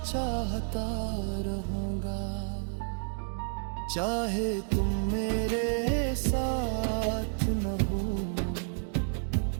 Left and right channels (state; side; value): silent; left; digital silence